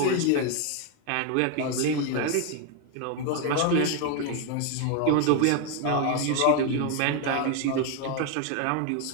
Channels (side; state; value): both; different; correlation 0.01